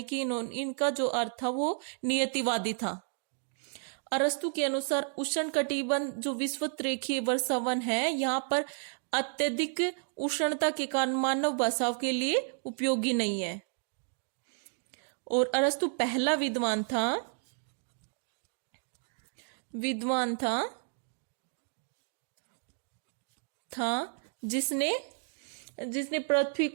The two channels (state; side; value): silent; left; 56 dB below the other